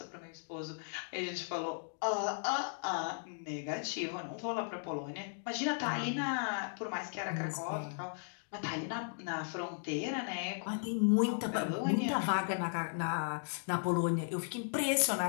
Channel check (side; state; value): right; silent; digital silence